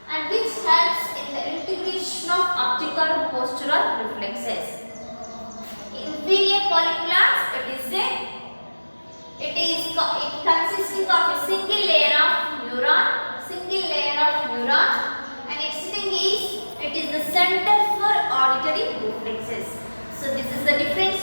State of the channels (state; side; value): inverted; both; correlation -1.00